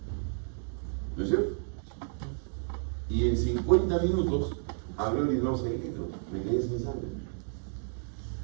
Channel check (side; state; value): left; silent; 57 dB below the other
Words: ¿No es cierto? Y en 50 minutos habré orinado 6 litros. Me quedé sin sangre.